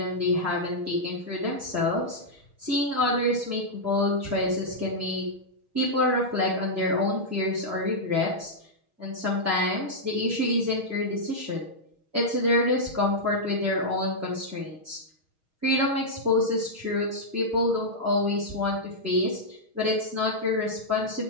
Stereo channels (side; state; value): left; late; 6.4 ms